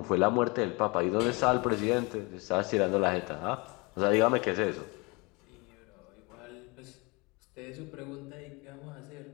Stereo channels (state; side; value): quieter; right; 27.6 dB